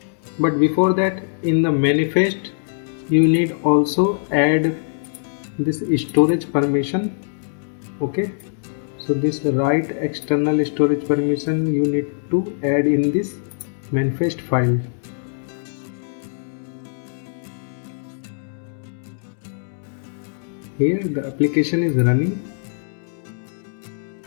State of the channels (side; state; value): right; silent; digital silence